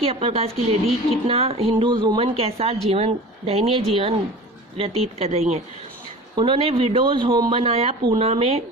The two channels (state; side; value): normal; both; correlation 0.37